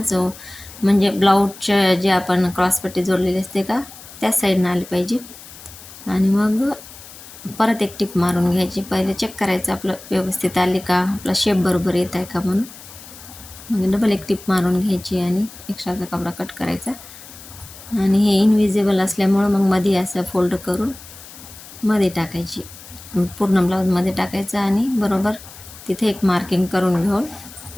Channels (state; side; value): noise; left; hiss, 17 dB below the sound